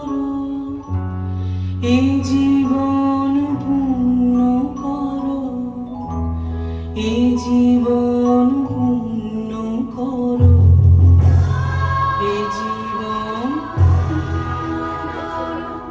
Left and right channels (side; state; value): both; identical; correlation 1.00